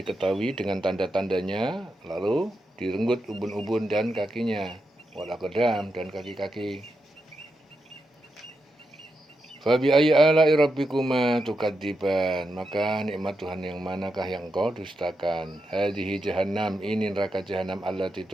dengan tanda-tandanya, lalu direnggut ubun-ubun dan kakinya, wal aqdam, dan kaki-kaki. Fabi ayyi ala'i rabbikuma tukadziban, maka nikmat Tuhan yang manakah yang kau dustakan. Hadhihi jahannam, ini neraka jahannam, allati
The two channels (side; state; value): both; normal; correlation 0.86